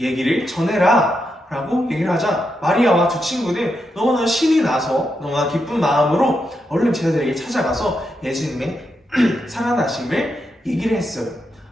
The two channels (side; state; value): both; normal; correlation 0.84